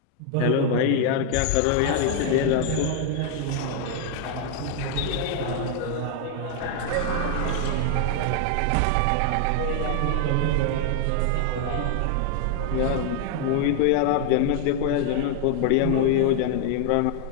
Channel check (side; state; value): both; different; correlation 0.00